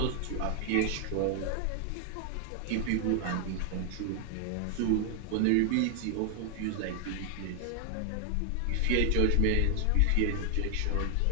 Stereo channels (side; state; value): both; different; correlation 0.00